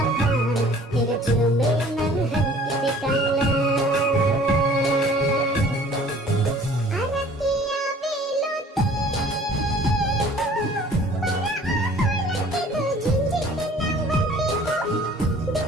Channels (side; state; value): both; normal; correlation 0.51